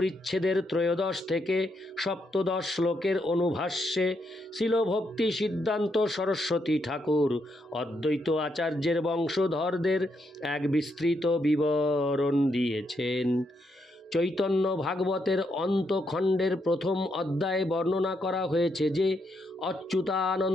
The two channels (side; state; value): both; normal; correlation 0.79